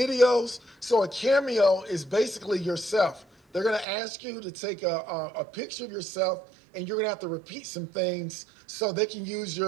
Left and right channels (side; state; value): left; drops out; at 3.9 s